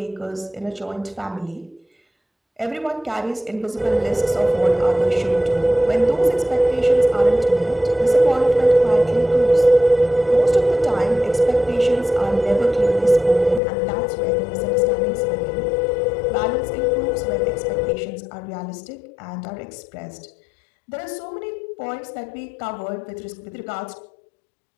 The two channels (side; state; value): right; drops out; at 13.6 s